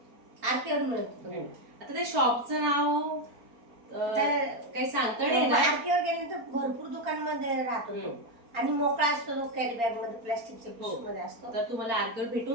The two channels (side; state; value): left; late; 4.3 ms